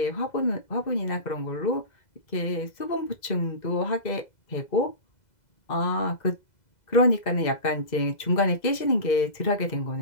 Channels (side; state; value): right; late; 2.0 ms